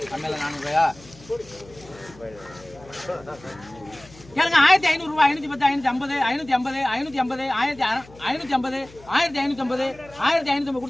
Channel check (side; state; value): left; noise; hum, 22 dB below the sound